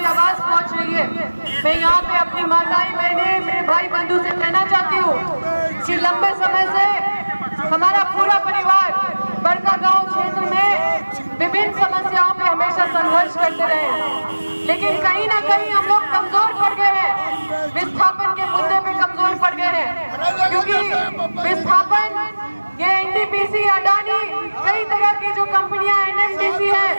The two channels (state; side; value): inverted; both; correlation -1.00